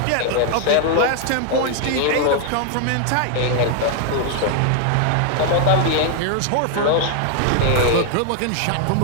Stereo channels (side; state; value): both; different; correlation 0.00